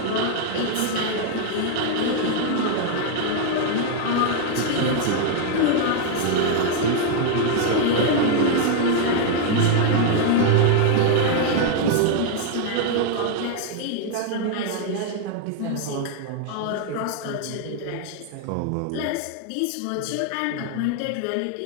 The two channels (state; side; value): different; both; correlation 0.00